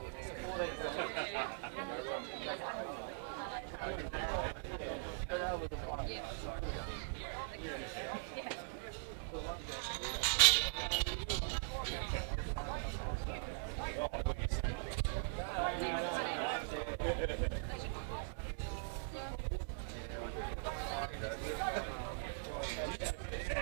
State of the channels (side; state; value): left; silent; digital silence